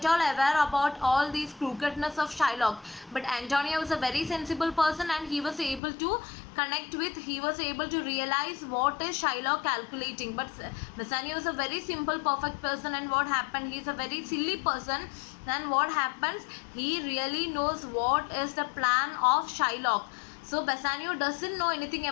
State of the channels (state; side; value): drops out; right; at 5.8 s